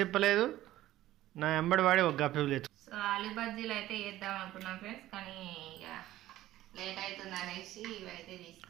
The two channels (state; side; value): quieter; left; 14.9 dB